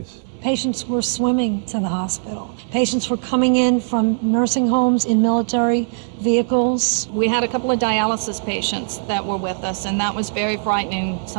Patients were swimming to the hospital. Patients were coming in from nursing homes in military vehicles. We had a couple of dialysis patients that were with us, and that was very frightening.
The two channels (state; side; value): silent; left; digital silence